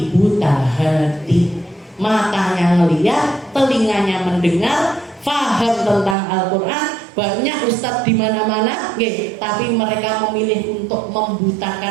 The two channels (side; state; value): left; drops out; at 6.2 s